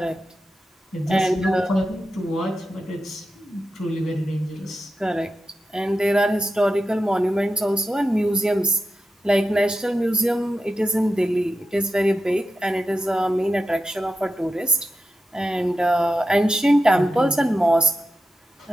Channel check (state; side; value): normal; both; correlation 0.90